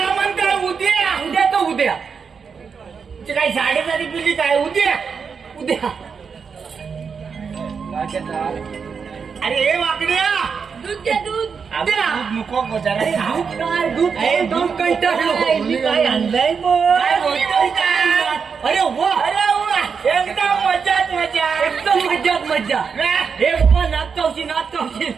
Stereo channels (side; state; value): left; quieter; 5.9 dB